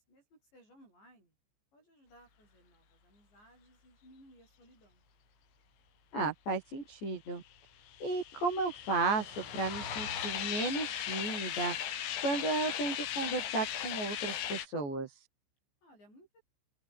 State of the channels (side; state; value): right; late; 15 ms